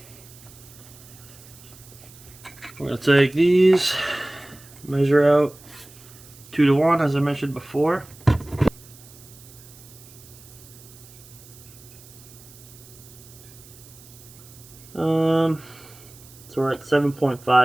we're going to take these, measure out 2-to-1 as I mentioned before. So we're at 7.5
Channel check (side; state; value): right; noise; hiss, 21 dB below the sound